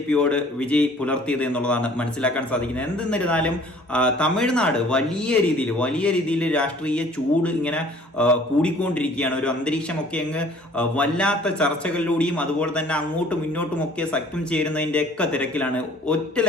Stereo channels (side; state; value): both; normal; correlation 0.53